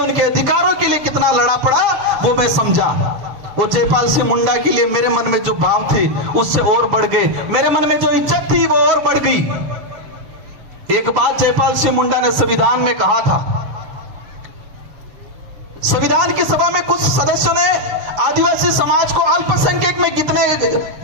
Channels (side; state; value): left; late; 6.9 ms